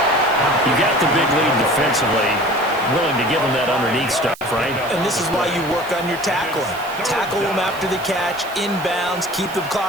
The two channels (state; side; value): noise; right; hiss, 19 dB below the sound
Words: You got the big lead defensively. Willing to give them that underneath stuff, right? And this is why you work on your tackling. Tackle them after the catch, inbounds, keep the